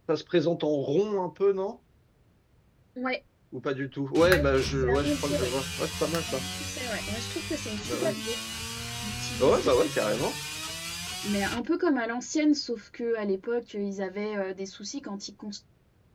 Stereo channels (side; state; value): both; identical; correlation 1.00